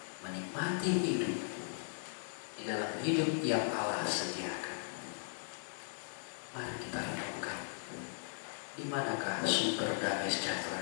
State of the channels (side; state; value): right; silent; digital silence